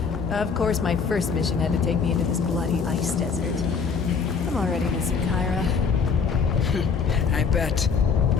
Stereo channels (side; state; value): right; quieter; 5.6 dB